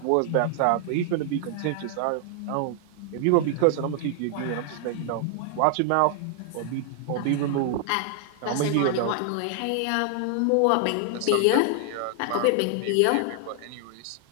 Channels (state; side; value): different; both; correlation 0.00